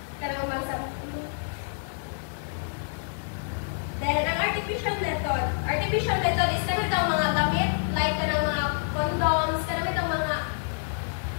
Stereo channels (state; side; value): silent; right; digital silence